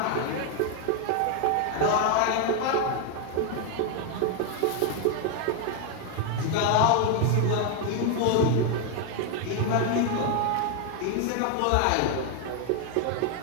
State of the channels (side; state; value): both; different; correlation 0.01